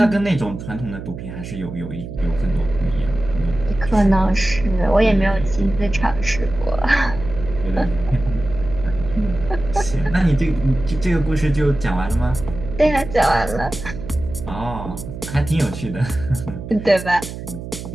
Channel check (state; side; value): noise; right; hum, 10 dB below the sound